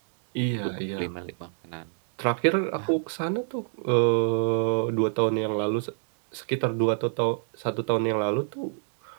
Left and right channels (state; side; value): silent; left; 60 dB below the other